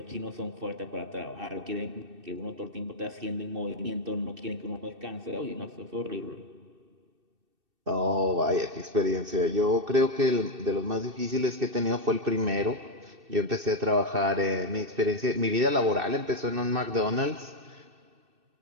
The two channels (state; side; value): late; left; 2.6 ms